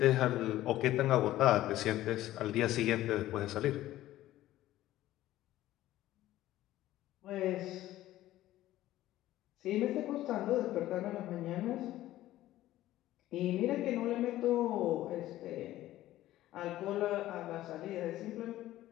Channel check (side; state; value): right; quieter; 14.7 dB